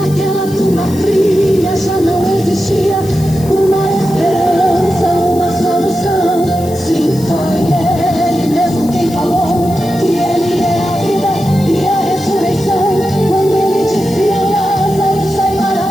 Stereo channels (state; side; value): noise; left; hiss, 18 dB below the sound